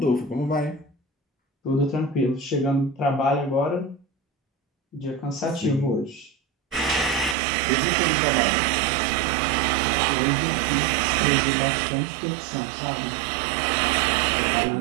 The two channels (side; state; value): left; drops out; at 7.4 s